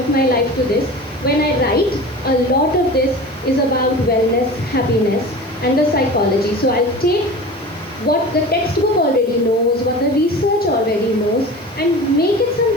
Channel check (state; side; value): noise; right; hiss, 26 dB below the sound